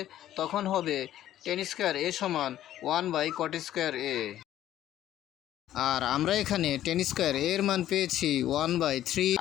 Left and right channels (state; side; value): quieter; right; 12.6 dB